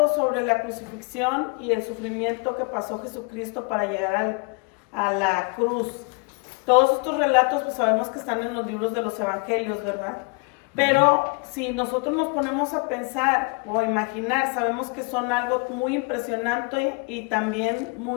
sobre la crucifixión y el sufrimiento que pasó Jesucristo para llegar a la cruz. Todos estos relatos pues sabemos que están en los libros de los evangelios, ¿verdad? Pero si nosotros nos ponemos a pensar o a imaginar, sabemos que son algo muy impresionante y también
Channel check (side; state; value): right; quieter; 33.9 dB